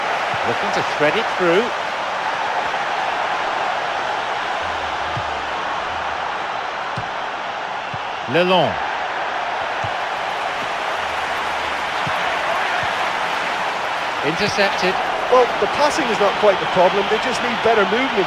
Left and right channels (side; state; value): both; identical; correlation 1.00